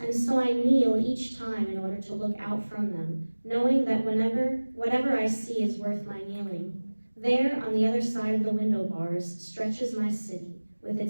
and so I kneel each time in order to look out from them, knowing that whatever I see is worth my kneeling. There, on the other side of the window bars, stretches my city with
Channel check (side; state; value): both; inverted; correlation -1.00